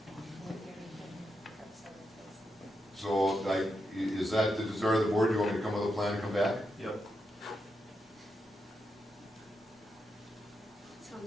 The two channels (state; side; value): normal; both; correlation 0.85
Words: So, like, is that the desire of the board? Do you want me to come with a plan and come back? Yep.